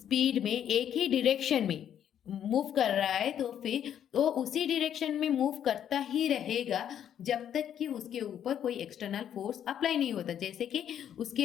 में एक ही डायरेक्शन में मूव कर रहा है तो फिर वो उसी डायरेक्शन में मूव करता ही रहेगा जब तक कि उसके ऊपर कोई एक्सटर्नल फोर्स अप्लाई नहीं होता। जैसे कि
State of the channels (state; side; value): quieter; right; 9.7 dB